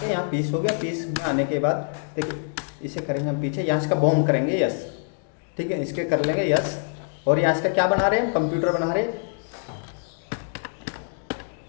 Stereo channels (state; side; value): silent; right; digital silence